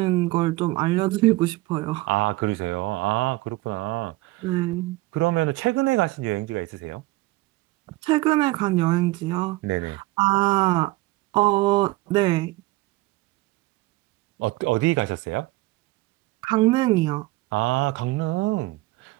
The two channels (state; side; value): quieter; left; 20.0 dB